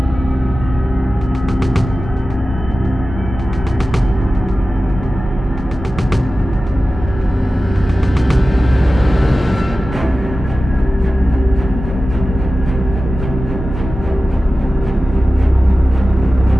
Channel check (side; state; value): both; normal; correlation 0.95